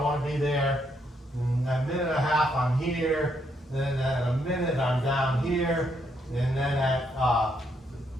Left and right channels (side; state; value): both; normal; correlation 0.75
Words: want to be there. And at a minute and a half, I'm here. Then at a minute, I'm down here. And then at